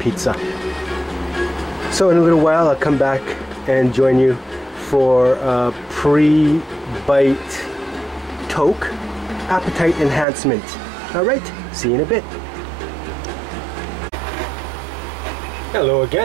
So in a little while I'll come back and join you for a pre-bite Toke appetite enhancement. Alright, see you in a bit. Hello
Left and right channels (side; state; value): left; drops out; at 10.2 s